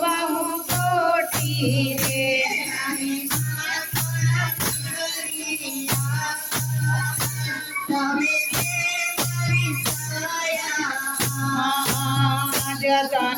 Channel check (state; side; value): identical; both; correlation 1.00